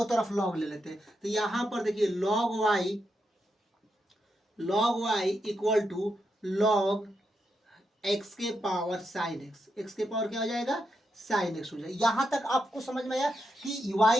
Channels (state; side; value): normal; both; correlation 0.84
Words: तरफ लॉग ले लेते हैं। तो यहां पर देखिए log y equal to log x के पावर साइन x के पावर क्या हो जाएगा, साइन एक्स हो जाए। यहां तक आपको समझ में आया कि